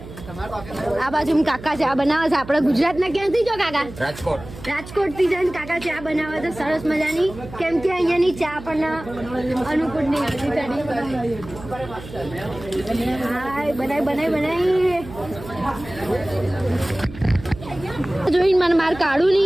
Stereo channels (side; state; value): right; noise; hum, 15 dB below the sound